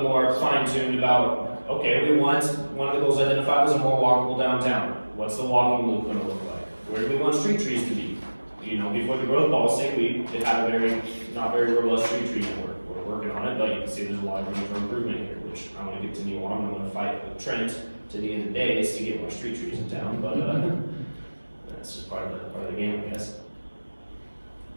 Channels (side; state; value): both; inverted; correlation -1.00